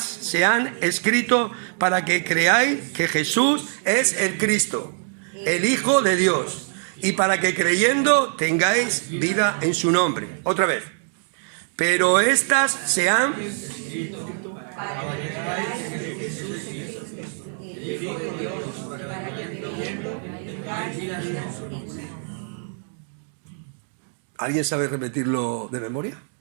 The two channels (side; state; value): left; silent; 63 dB below the other